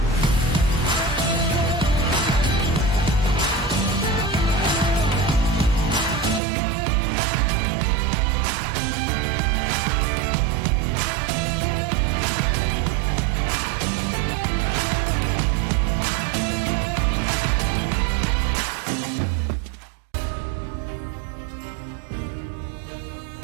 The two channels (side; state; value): left; drops out; at 6.4 s